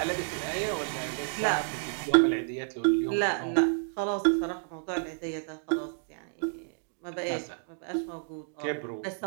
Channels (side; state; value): left; silent; digital silence